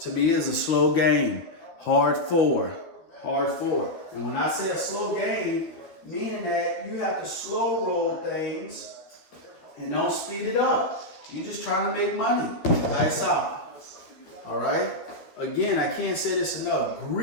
me, it's a slow game. Hard four. And when I say a slow game, meaning that you have to slow roll things and don't speed it up. You're just trying to make money. Dice out. All right? Again, I can't say this enough.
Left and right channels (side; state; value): right; late; 12 ms